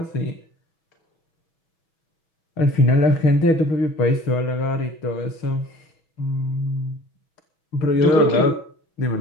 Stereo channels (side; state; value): right; late; 6.2 ms